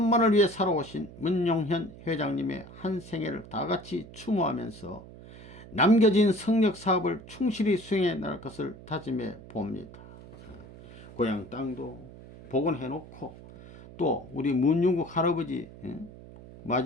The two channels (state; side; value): noise; right; hum, 17 dB below the sound